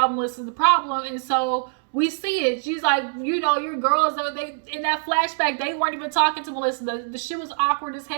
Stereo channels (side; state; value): left; silent; 63 dB below the other